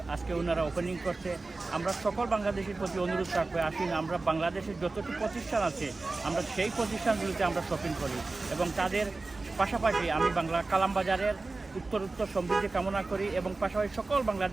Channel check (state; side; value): quieter; left; 3.5 dB